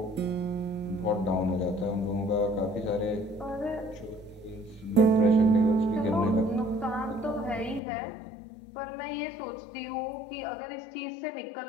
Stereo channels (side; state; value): right; drops out; at 7.8 s